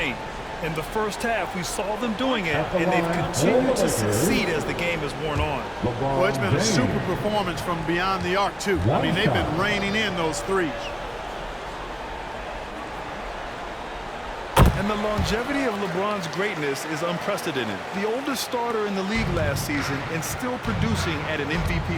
In the first half, we saw them doing it, and they've continued to succeed as the game has worn on. Well, it's been a super performance from beyond the arc, too. I mean, they've been raining in those threes. And the longevity of LeBron's greatness is unprecedented. The oldest starter in the league last season and still producing at an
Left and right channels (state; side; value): identical; both; correlation 1.00